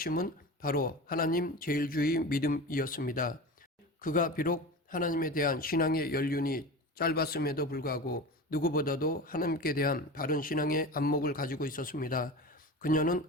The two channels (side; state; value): both; normal; correlation 0.30